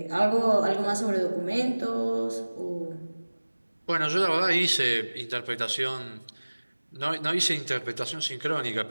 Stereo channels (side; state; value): both; inverted; correlation -1.00